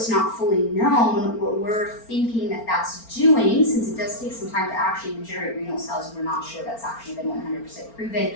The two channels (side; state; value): right; late; 4.4 ms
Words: not fully known, what we're thinking that that's doing, since it does take some time to actually regenerate renal cells, we're not sure that's actually been 100% proven,